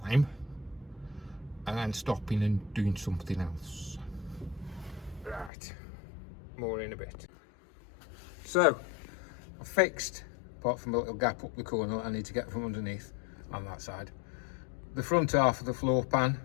and then stopping and doing something else. Right, more in a bit. So I've fixed, apart from a little gap up the corner I need to get from underneath on that side, the front half of the floor pan.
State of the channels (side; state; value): right; drops out; at 5.5 s